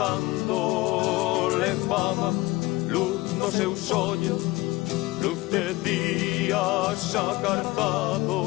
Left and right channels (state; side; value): quieter; right; 20.8 dB